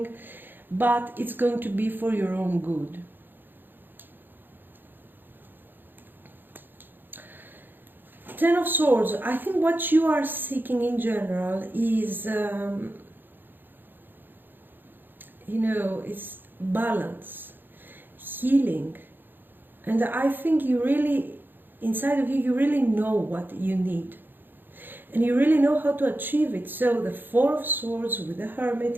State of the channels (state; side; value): late; left; 0.094 ms